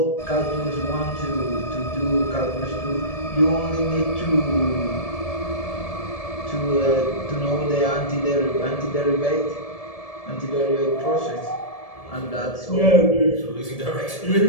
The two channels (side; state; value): right; late; 1.7 ms